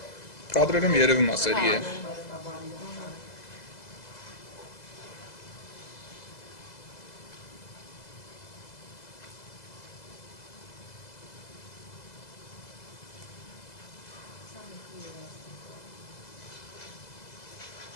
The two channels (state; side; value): late; right; 2.0 ms